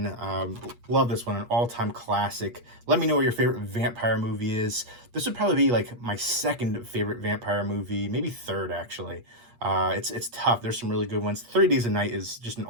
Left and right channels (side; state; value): left; late; 8.4 ms